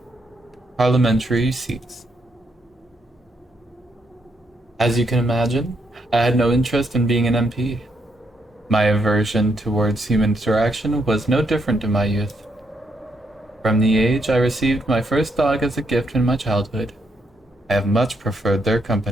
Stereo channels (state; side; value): normal; both; correlation 0.77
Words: parliamentary seats. As you can imagine, I had no interest in being an MP. My aversion towards human interaction was no different in my youth. From the age I received my first dog as a gift in my childhood, I have much preferred their